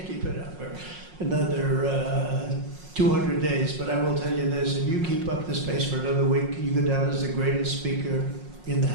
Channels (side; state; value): left; late; 5.5 ms